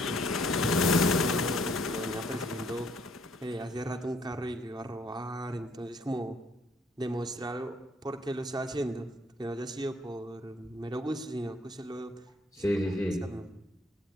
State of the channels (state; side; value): normal; both; correlation 0.64